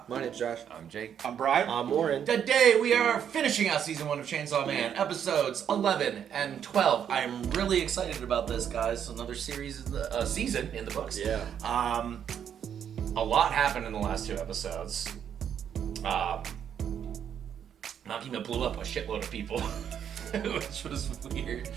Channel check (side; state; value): left; quieter; 8.7 dB